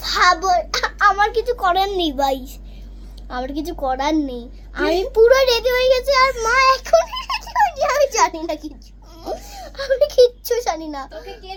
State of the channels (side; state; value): both; identical; correlation 1.00